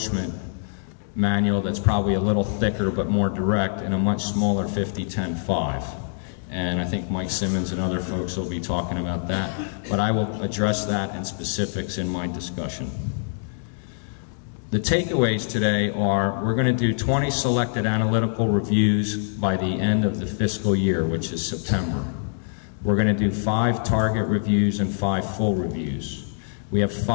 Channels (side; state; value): right; silent; digital silence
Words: manual that's probably a little thicker but more direct, and a much smaller 50-10-5. And I think Mike Simmons and other folks will be talking about that, but I will address that in specifics in my discussion. The takeaways today are we're going to do 20 selected analytical reviews by the end of the fiscal year, which is September. We're going to do 5 target reviews and 5 full reviews. We have